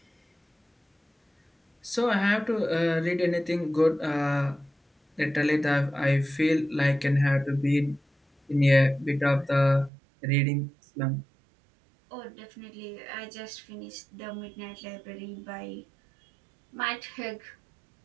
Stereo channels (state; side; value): drops out; left; at 9.9 s